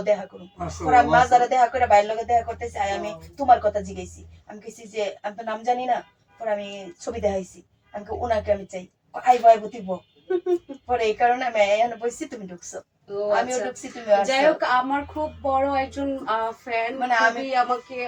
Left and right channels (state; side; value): identical; both; correlation 1.00